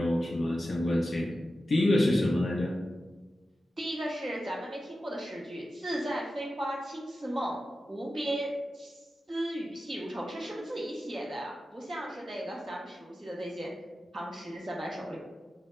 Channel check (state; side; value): normal; both; correlation 0.93